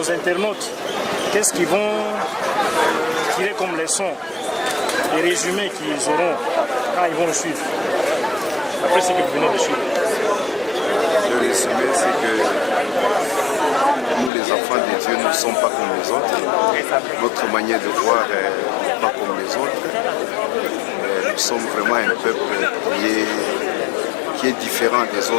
internautes, qu'est-ce qu'ils vont tirer comme leçon? Les résumés qu'ils auront quand ils vont nous suivre. Après ce que vous venez de suivre. Le résumé, c'est que nous, les enfants de Dieu, nous ne sommes pas comme les autres. Notre manière de voir n'est pas comme les autres. Nous sommes vraiment un peuple qui est différent des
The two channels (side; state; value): right; drops out; at 14.3 s